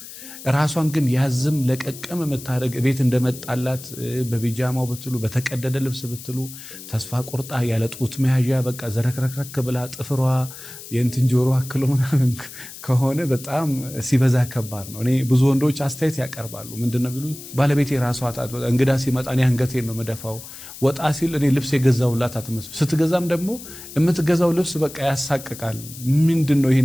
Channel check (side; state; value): left; noise; hiss, 14 dB below the sound